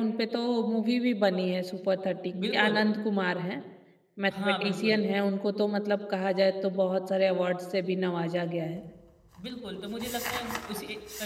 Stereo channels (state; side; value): identical; both; correlation 1.00